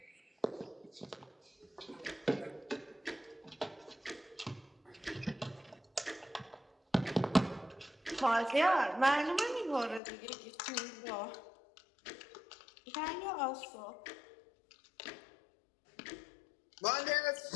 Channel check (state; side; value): drops out; right; at 10.0 s